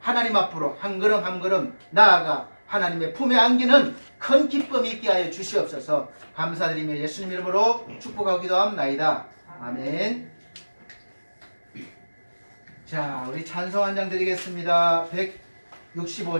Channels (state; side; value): inverted; both; correlation -1.00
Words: 앞으로 한 걸음 한 걸음 나아가 하나님의 품에 안기는 큰 기쁨이 있게 하여 주시옵소서. 감사드리며 예수님 이름으로 축복하기도 합나이다. 아멘. 자, 우리 찬송 한 장 드리겠습니다.